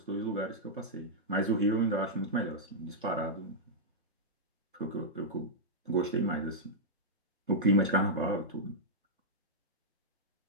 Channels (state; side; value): normal; both; correlation -0.09